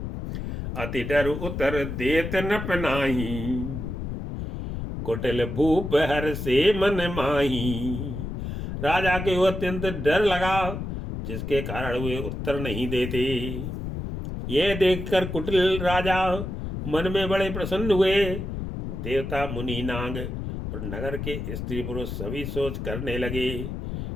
अति डर उतर देत न पनाही, कुटिल भूप हर से मन माही। राजा के वो अत्यंत डर लगा जिसके कारण वे उत्तर नहीं देते। यह देखकर कुटिल राजा मन में बड़े प्रसन्न हुए। देवता मुनि नाग और नगर के स्त्री पुरुष सभी सोच करने लगे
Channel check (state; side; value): noise; left; rumble, 5 dB below the sound